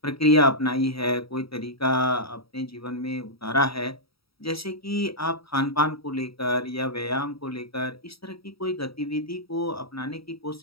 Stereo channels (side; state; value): right; late; 0.76 ms